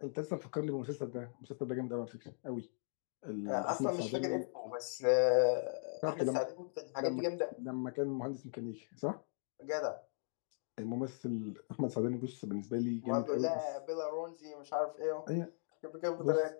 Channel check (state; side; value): silent; right; digital silence